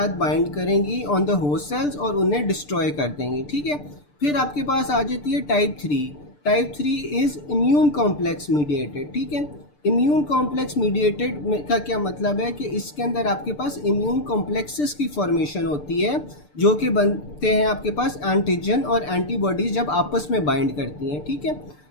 बाइंड करेंगी ऑन द होस्ट सेल्स और उन्हें डिस्ट्रॉय कर देंगी। ठीक है, फिर आपके पास आ जाती है type 3। Type 3 is immune complex mediated. ठीक है, इम्यून कॉम्प्लेक्स मीडिएटेड का क्या मतलब है कि इसके अंदर आपके पास इम्यून कॉम्प्लेक्सेस की फॉर्मेशन होती है जो कि बनते हैं आपके पास एंटीजन और एंटीबॉडीज जब आपस में बाइंड करती हैं। ठीक है,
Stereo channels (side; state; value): right; late; 6.8 ms